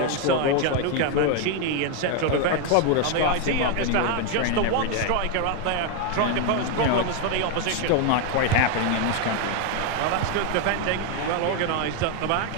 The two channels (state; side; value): different; both; correlation 0.01